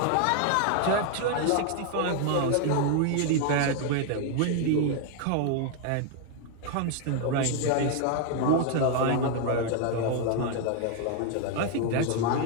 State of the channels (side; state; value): both; different; correlation 0.00